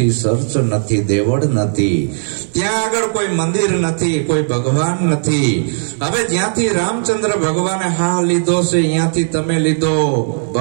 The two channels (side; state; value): left; silent; digital silence